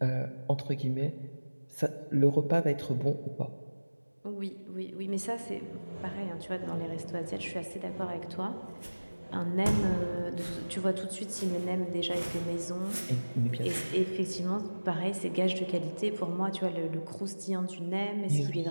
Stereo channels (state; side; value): inverted; both; correlation -1.00